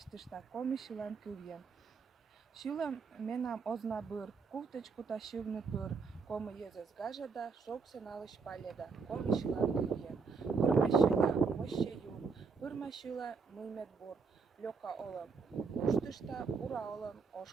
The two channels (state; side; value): quieter; left; 5.1 dB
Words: коми шилан кылген. Шилам менам озна быр, куфточку та шивны пыр, коми езес гажада, шоксе налыш паледа, коми шилан кылген. Пырма шила, моще юн, пырма шила, мылмет бор, лёка олам, уштышта, бура олам,